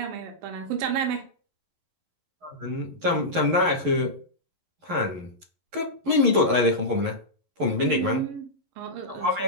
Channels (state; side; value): late; left; 11 ms